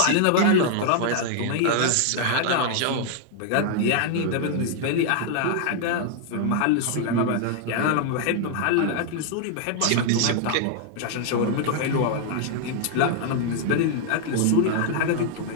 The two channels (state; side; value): different; both; correlation 0.00